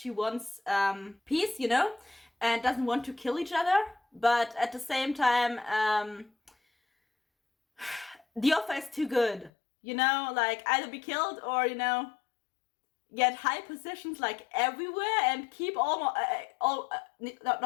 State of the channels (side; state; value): right; drops out; at 9.5 s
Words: wants peace, you know, and doesn't want to kill each other. But at the same time, the offer is too good, you know, like either be killed or, you know, get high positions like everywhere and keep